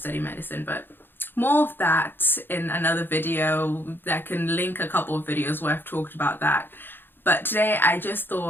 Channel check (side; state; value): right; late; 0.099 ms